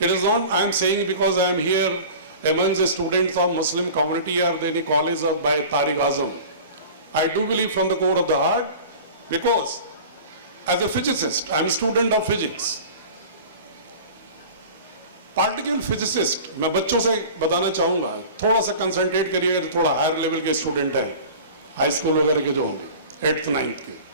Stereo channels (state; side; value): inverted; both; correlation -0.39